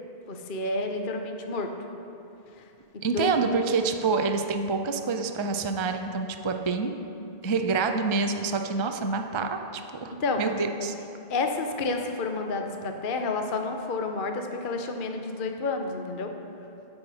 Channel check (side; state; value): right; late; 1.3 ms